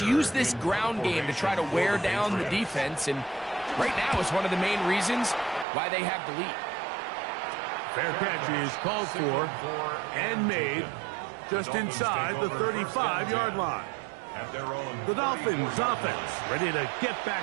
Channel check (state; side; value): drops out; left; at 5.7 s